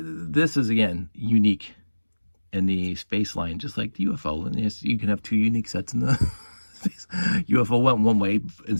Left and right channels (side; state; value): both; inverted; correlation -1.00